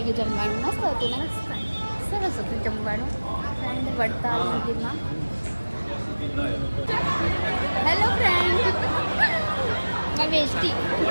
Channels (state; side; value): inverted; both; correlation -1.00